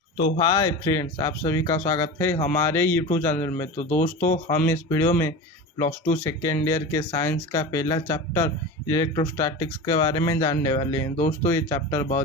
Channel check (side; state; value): both; normal; correlation 0.28